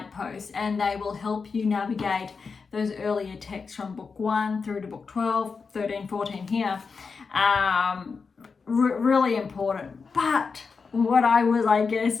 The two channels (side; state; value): right; quieter; 5.1 dB